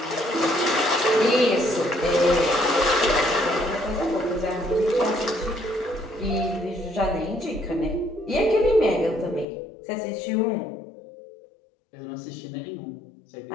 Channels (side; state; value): right; drops out; at 9.5 s